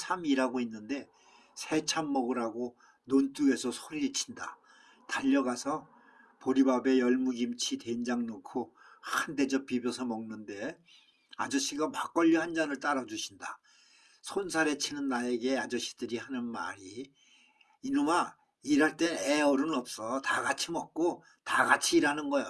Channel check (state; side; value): identical; both; correlation 1.00